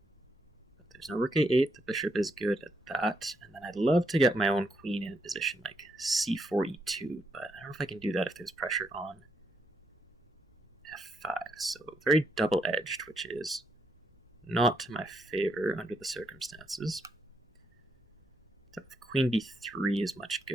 But there's no rook a8, the bishop is good at that, and then I'd love to get my own queen in a position like c4, e2, but I don't know if I can do that if there's pressure on f5. So very double-edged, which is not to my favor under the circumstances. Queen b3 is much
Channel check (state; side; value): normal; both; correlation 0.78